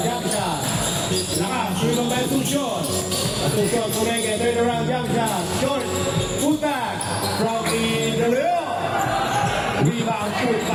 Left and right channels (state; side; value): identical; both; correlation 1.00